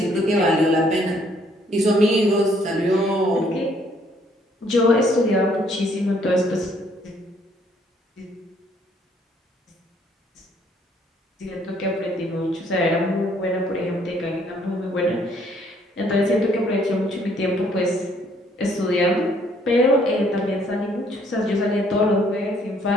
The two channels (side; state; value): both; normal; correlation 0.65